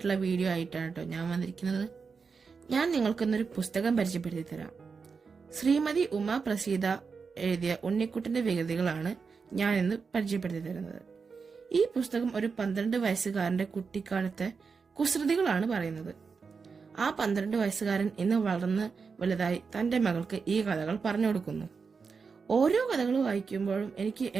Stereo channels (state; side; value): quieter; left; 5.2 dB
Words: വീഡിയോ ആയിട്ടാണ് കേട്ടോ ഞാൻ വന്നിരിക്കുന്നത്. ഞാൻ നിങ്ങൾക്കിന്നൊരു പുസ്തകം പരിചയപ്പെടുത്തി തരാം. ശ്രീമതി ഉമ പ്രസീത എഴുതിയ ഉണ്ണിക്കുട്ടന്റെ വികൃതികളാണ് ഞാൻ ഇന്ന് പരിചയപ്പെടുത്തി തരുന്നത്. ഈ പുസ്തകം ഒരു 12 വയസ്സുകാരന്റെ കുട്ടിക്കാലത്തെ കുസൃതികളാണ് പറയുന്നത്. ആ 12 വയസ്സുകാരൻ ഇന്ന് വളർന്ന് വലുതായി തന്റെ മകൾക്ക് ഈ കഥകൾ പറഞ്ഞു കൊടുക്കുന്നു. ഓരോ കഥകൾ വായിക്കുമ്പോഴും എനിക്ക്